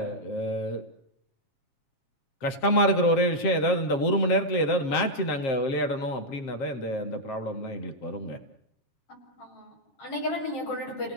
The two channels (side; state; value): right; late; 7.3 ms